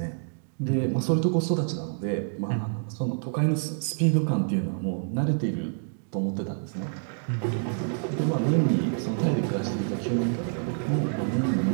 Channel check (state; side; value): silent; left; 60 dB below the other